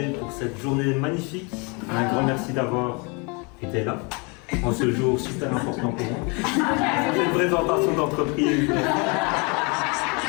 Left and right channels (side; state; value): right; quieter; 31.1 dB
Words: pour cette journée magnifique. Un grand merci d'avoir été là en ce jour super important pour moi. C'est une présentation d'entreprise.